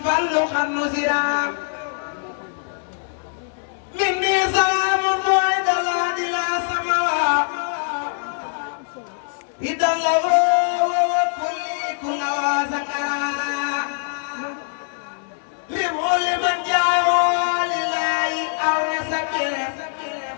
xarnu sira min ni salaamu buay dala di la samawa idalla wa kulli kulla wa sakara liman jaawo lillahi aw nasakir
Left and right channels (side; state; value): right; silent; 64 dB below the other